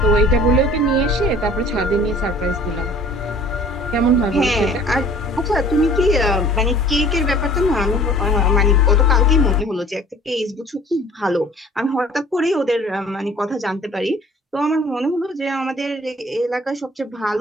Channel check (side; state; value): both; normal; correlation 0.49